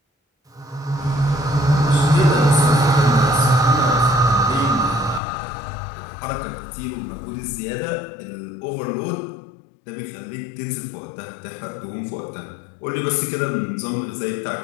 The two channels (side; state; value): right; drops out; at 5.2 s